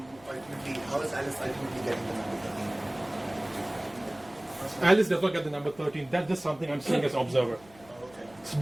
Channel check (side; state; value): left; noise; hum, 25 dB below the sound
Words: is Alice ultimately getting the number? Alice does not get the number 13. That's just something I'm seeing as an observer. Oh, okay. So